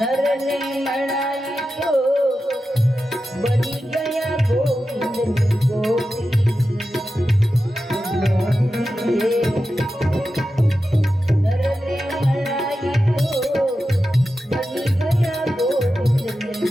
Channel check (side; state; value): both; normal; correlation 0.91